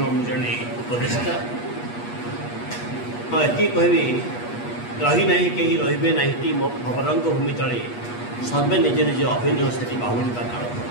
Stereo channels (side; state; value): right; late; 8.3 ms